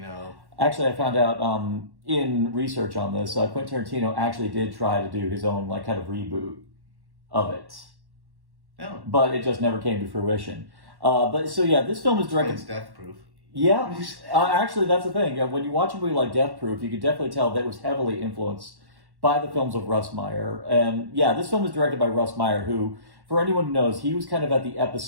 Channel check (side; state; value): left; late; 1.1 ms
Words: Actually, I found out in research on this, Quentin Tarantino actually did try to do his own like kind of reboot of it. Oh. But it just never came to fruition. But so yeah, this film is directed. It's Death Proof. Yeah, actually, that's the thing. When you watch a movie like Death Proof, you could definitely tell that it was heavily influenced by the films of Russ Meyer. And yeah, this film is directed by Russ Meyer, who, for anyone who knows, he was kind of at the